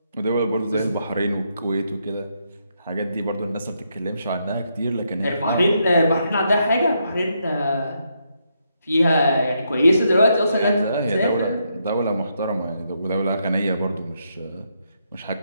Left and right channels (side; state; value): both; inverted; correlation -0.78